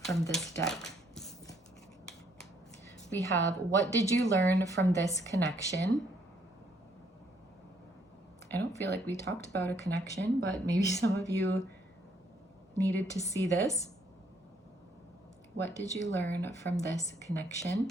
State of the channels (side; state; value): both; normal; correlation 0.68